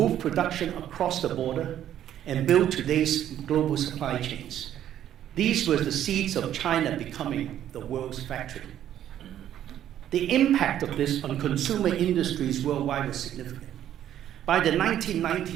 production across the border, and build today's global supply chains. These were the seeds of China becoming the world's factory. The impact of this on consumer industries worldwide was significant. By the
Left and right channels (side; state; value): left; quieter; 11.1 dB